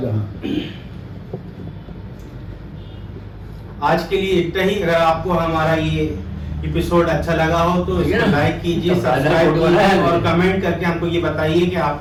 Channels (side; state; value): both; identical; correlation 1.00